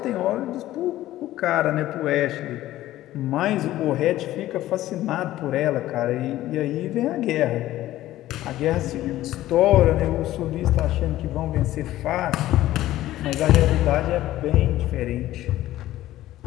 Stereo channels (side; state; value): right; quieter; 14.8 dB